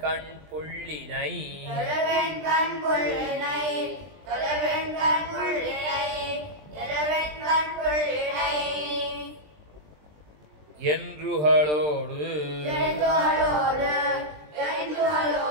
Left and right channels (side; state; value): left; late; 20 ms